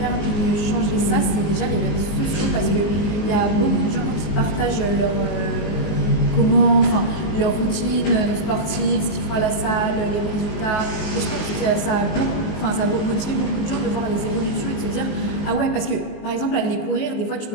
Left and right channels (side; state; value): right; late; 19 ms